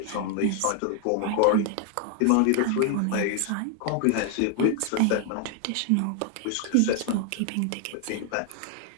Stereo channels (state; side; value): different; both; correlation 0.00